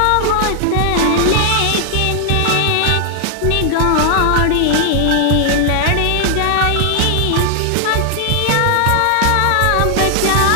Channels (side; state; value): both; different; correlation 0.00